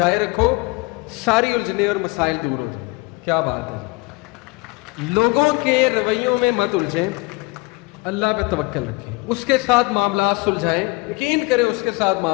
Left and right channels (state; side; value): quieter; right; 25.5 dB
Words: رکھو، ساری الجھنے اور مسائل دور ہو جائیں۔ کیا بات ہے، لوگوں کے رویوں میں مت الجھیں، اللہ پہ توکل رکھیں، اس کے ساتھ معاملات سلجھائیں، یقین کریں اس کے ساتھ